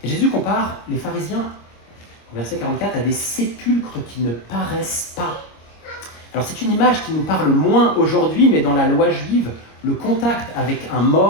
Et Jésus compare les pharisiens, au verset 44, à des sépulcres qui ne paraissent pas. Alors c'est une image qui nous parle moins aujourd'hui, mais dans la loi juive, le contact avec un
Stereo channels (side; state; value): right; late; 26 ms